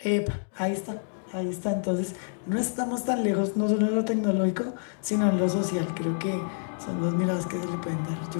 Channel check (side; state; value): right; silent; digital silence